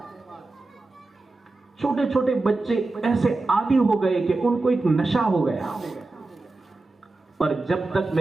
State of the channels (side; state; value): left; quieter; 3.3 dB